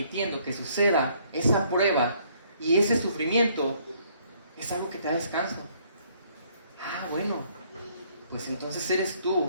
que suceda esa prueba y ese sufrimiento, es algo que te da descanso. Bueno, pues entonces eres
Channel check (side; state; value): both; inverted; correlation -0.65